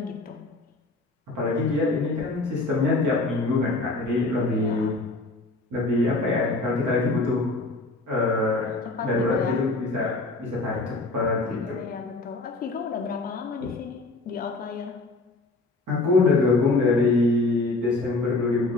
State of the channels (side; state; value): right; quieter; 3.2 dB